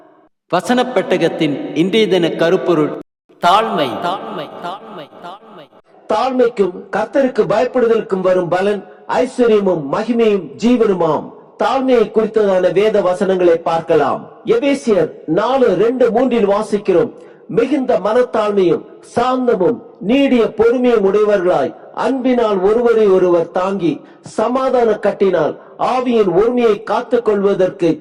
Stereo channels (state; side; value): identical; both; correlation 1.00